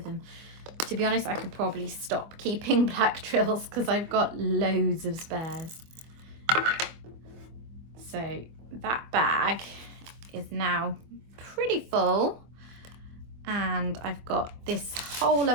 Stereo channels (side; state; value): left; late; 24 ms